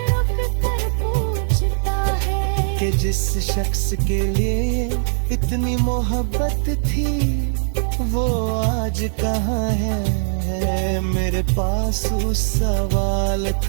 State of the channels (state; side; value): silent; left; digital silence